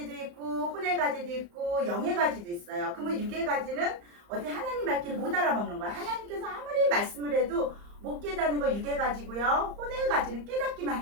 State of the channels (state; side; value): late; left; 34 ms